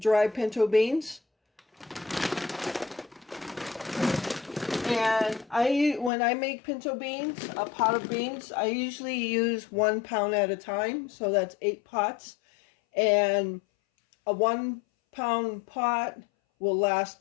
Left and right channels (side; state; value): right; drops out; at 6.1 s